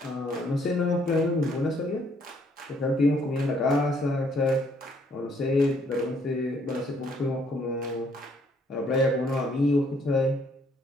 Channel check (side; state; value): both; normal; correlation 0.66